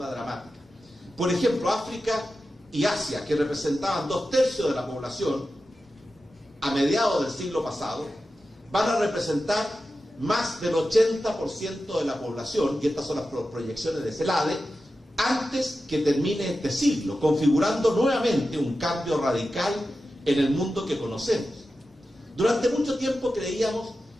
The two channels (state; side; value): normal; both; correlation 0.92